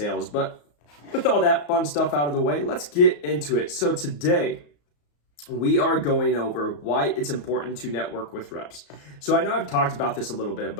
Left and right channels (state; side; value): late; right; 34 ms